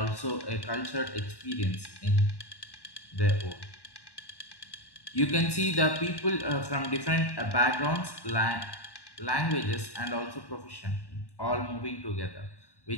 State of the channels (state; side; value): late; right; 1.1 ms